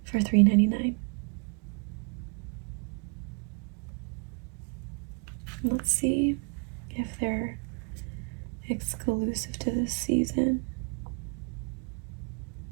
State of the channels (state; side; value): quieter; left; 37.2 dB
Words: for $3.99. Let's see if they're exclusive to this season.